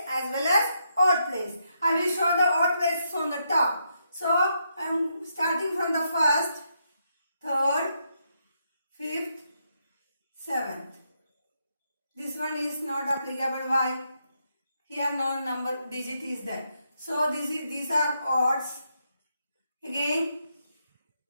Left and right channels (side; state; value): both; inverted; correlation -0.79